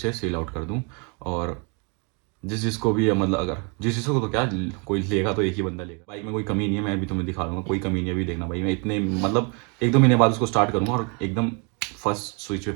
सेल आउट कर दूँ। और जिसको भी मतलब अगर जिसको तो क्या, कोई लेगा तो एक ही बंदा लेगा। बाइक में कोई कमी नहीं है, मैं अभी तुम्हें दिखा दूंगा, कोई कमी नहीं है। अभी देखना भाई, मैं इतने मतलब 1-2 महीने बाद उसको स्टार्ट करूँगा और एकदम फर्स्ट स्विच पे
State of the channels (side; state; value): left; quieter; 34.6 dB